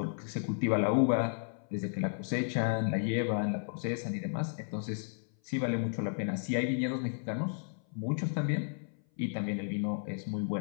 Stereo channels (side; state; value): right; silent; 56 dB below the other